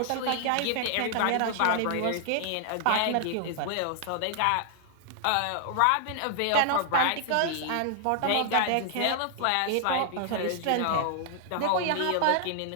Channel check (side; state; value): both; different; correlation 0.00